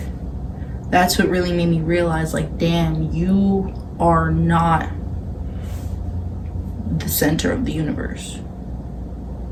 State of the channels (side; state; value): both; identical; correlation 1.00